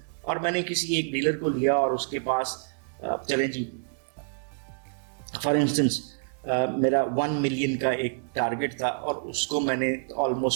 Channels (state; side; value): silent; left; digital silence